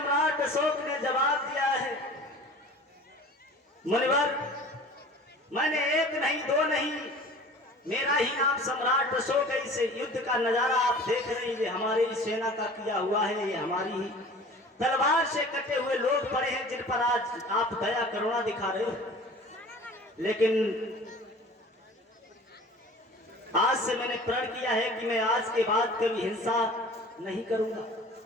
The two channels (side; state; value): both; normal; correlation 0.43